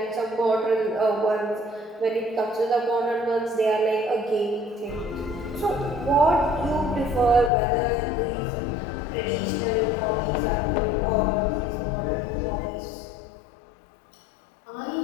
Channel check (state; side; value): drops out; right; at 7.5 s